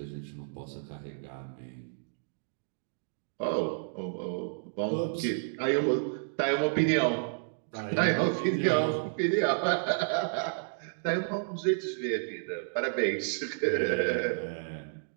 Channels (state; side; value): silent; left; digital silence